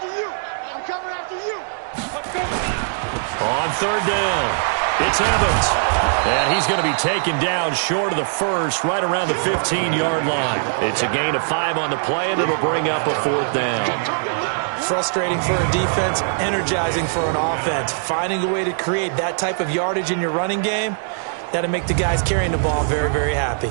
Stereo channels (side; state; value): left; silent; digital silence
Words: you. I'm coming after you. Let's go. On 3rd down, it's Evans. And he's going to be taken down short of the first, right around the 15-yard line. It's a gain of 5 on the play, and it'll bring up a 4th down. Frustrating for a defense, energizing for an offense. Finding a way to create that type of yardage in your running game, that'll make the guys carrying the ball very, very happy.